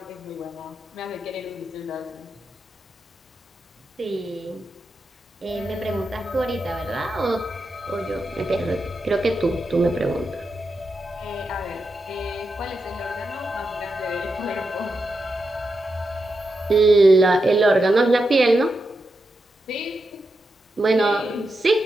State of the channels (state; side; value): normal; both; correlation 0.87